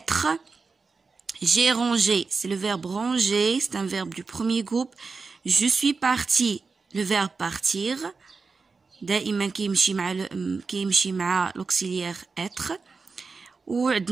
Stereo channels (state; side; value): quieter; left; 4.5 dB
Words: J'ai rangé, c'est le verbe ranger, c'est un verbe du premier groupe. Je suis parti, le verbe partir. دائما كيمشي مع l'auxiliaire être.